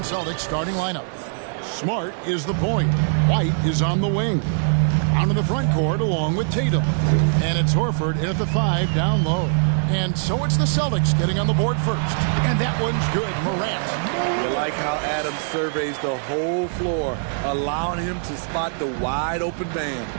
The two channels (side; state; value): left; silent; 64 dB below the other